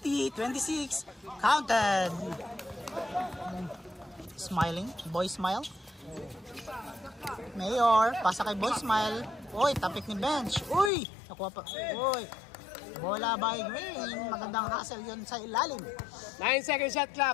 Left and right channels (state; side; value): drops out; right; at 10.9 s